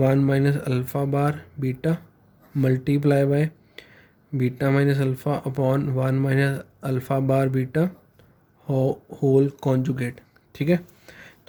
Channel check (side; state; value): both; identical; correlation 1.00